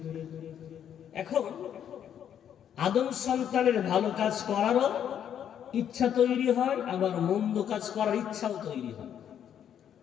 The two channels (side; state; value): right; quieter; 9.3 dB